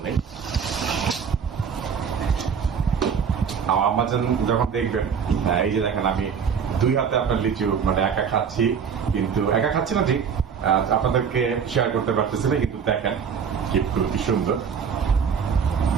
নেই। আমার আম্মা যখন দেখবেন, এই যে দেখেন আমি 2 হাতে আপনার লিচু মানে একা খাচ্ছি, কিন্তু একা খাচ্ছি না ঠিক, আপনাদেরকে শেয়ার করতে পারতেছি না, কিন্তু দেখেন কি সুন্দর।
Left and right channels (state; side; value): quieter; left; 6.8 dB